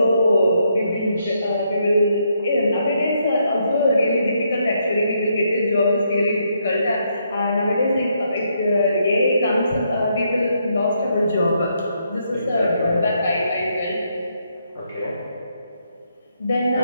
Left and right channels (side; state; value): both; inverted; correlation -0.76